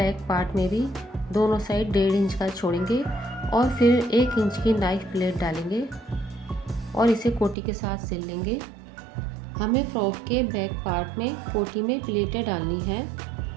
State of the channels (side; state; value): left; drops out; at 7.6 s